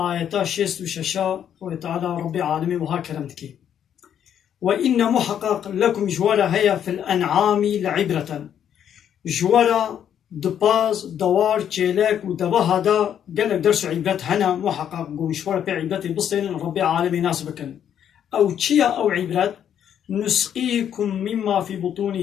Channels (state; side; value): quieter; right; 9.4 dB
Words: 66 وتعالى ربي عالمي وها كرمتكي وإن محقق لكم جوارا هيا في الأنعام لعبرة جوارا دباز دوار تشيلك ودبا هذا قالك درس عبرة هنا محقق جوارا بعبرة بصين ربي عالمي ناسبكن أو تشيا أو عبرة نسقيكم مما في